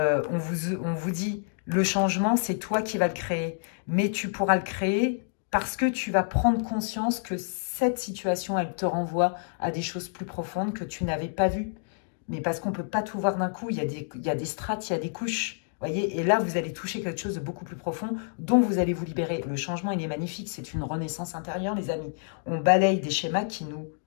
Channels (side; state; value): right; silent; digital silence